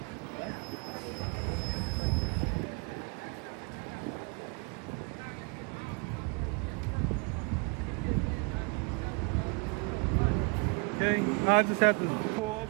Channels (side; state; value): left; quieter; 32.3 dB